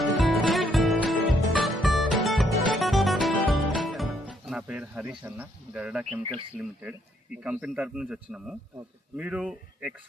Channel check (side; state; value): both; normal; correlation 0.71